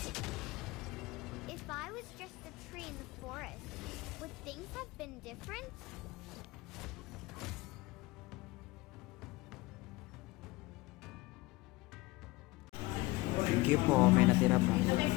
If I was just a tree in the forest, would things have been different? Sige po, may natira pa.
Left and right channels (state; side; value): quieter; right; 20.9 dB